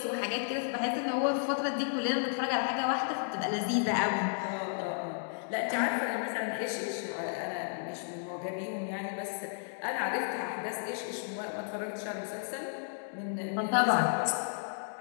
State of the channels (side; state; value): right; silent; digital silence